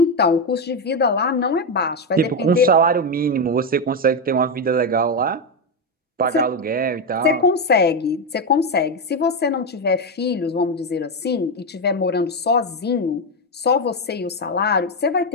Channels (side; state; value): both; normal; correlation 0.08